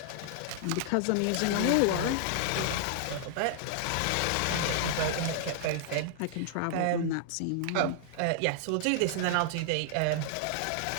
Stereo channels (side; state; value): both; different; correlation -0.01